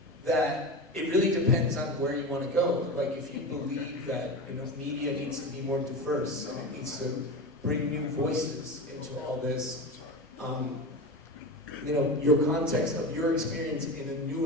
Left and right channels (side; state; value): both; normal; correlation 0.24